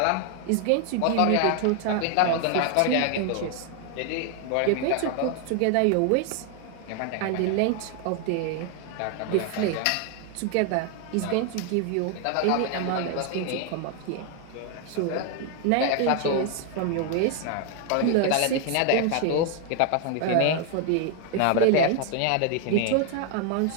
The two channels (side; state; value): both; different; correlation 0.00